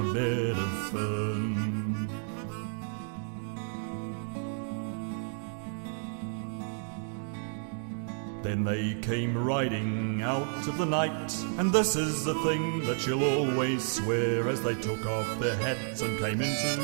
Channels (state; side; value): silent; left; 57 dB below the other